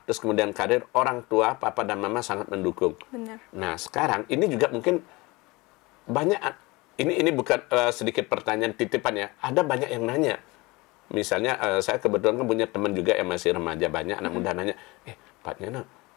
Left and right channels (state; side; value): quieter; right; 23.5 dB